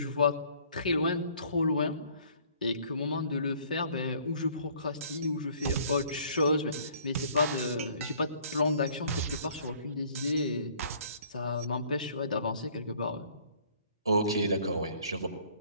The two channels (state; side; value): inverted; both; correlation -0.57